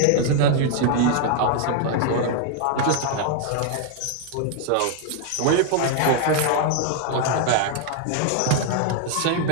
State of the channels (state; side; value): different; both; correlation 0.00